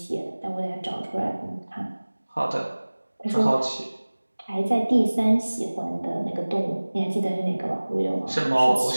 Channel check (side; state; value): both; inverted; correlation -1.00